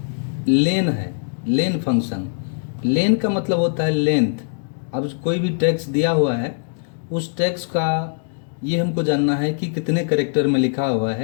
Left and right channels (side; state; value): right; silent; 65 dB below the other